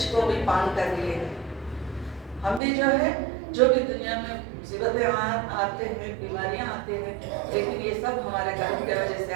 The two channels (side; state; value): left; drops out; at 2.6 s